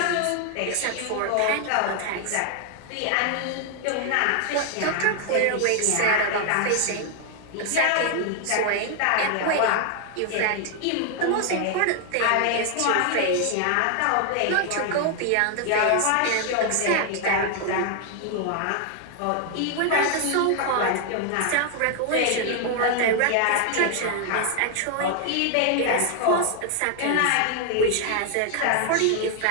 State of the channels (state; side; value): different; both; correlation 0.00